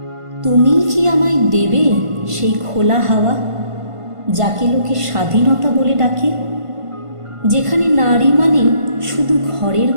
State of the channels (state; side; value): late; left; 1.5 ms